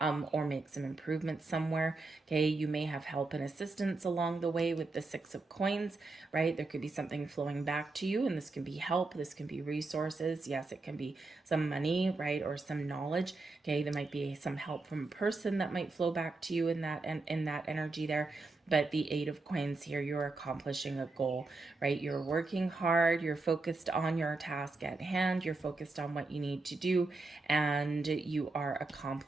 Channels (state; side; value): quieter; left; 3.5 dB